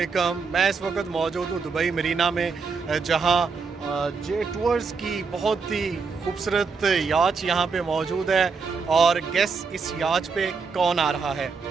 मैं इस वक्त मौजूद हूँ दुबई मरीना में, जहाँ जे टूर्स की बहुत ही खूबसूरत याच यहाँ पे मौजूद है। और गेस इस याच पे कौन आ रहा है?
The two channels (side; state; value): left; quieter; 5.0 dB